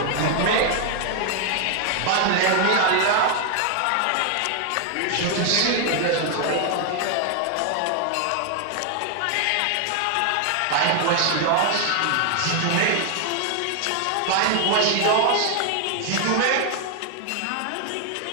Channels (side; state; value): both; different; correlation 0.00